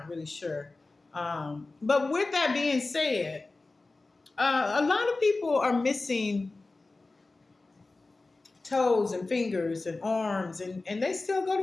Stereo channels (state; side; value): quieter; right; 3.4 dB